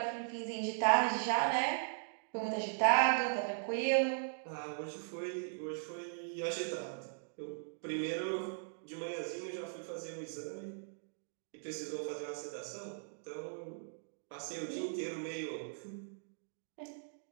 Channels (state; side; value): silent; left; digital silence